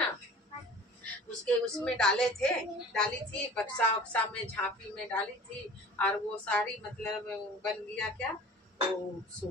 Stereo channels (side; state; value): both; normal; correlation 0.44